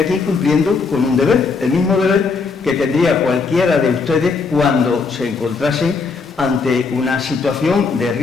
cumpliendo con un deber, el mismo deber que tendría cualquiera de ustedes cuando se encontrasen ante una situación de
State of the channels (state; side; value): quieter; right; 4.7 dB